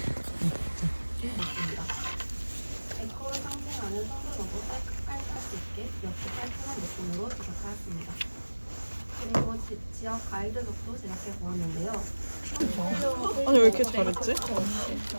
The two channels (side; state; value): both; inverted; correlation -1.00